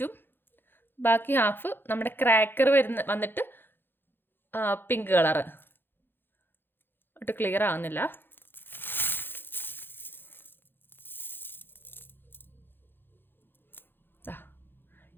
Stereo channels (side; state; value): right; late; 0.10 ms